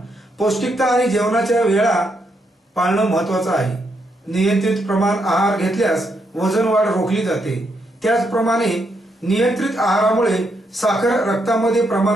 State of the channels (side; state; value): both; normal; correlation 0.78